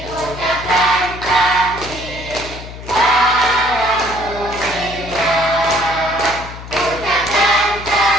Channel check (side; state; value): left; noise; hum, 13 dB below the sound